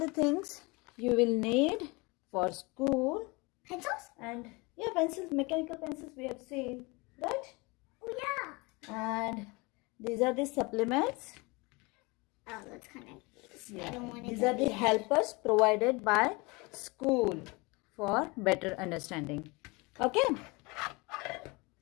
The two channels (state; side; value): quieter; right; 26.3 dB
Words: things you will need for school. Pencils? And yeah, pencils, mechanical pencils we have seen, right? Oh, yeah. And these are the supplements. Oh, that's kind of Yeah. I don't want These are the helpers provided by school for better understanding. Okay.